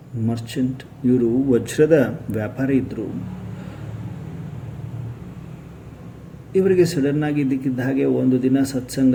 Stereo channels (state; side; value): identical; both; correlation 1.00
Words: ಮರ್ಚೆಂಟ್. ಇವರು ವಜ್ರದ ವ್ಯಾಪಾರಿ ಇದ್ದರು. ಇವರಿಗೆ ಸಡನ್ನಾಗಿ ಇದ್ದಕ್ಕಿದ್ದ ಹಾಗೆ ಒಂದು ದಿನ